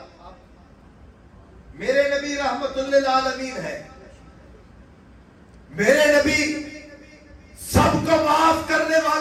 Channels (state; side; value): identical; both; correlation 1.00